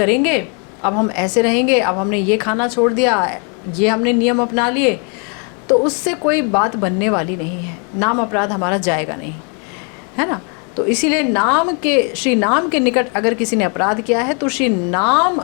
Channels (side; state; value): right; quieter; 37.6 dB